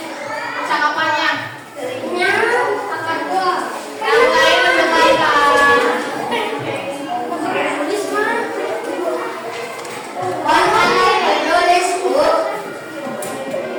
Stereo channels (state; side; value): identical; both; correlation 1.00